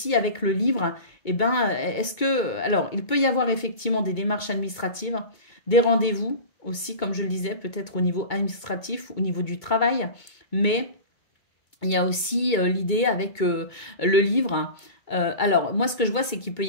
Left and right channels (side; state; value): right; late; 2.2 ms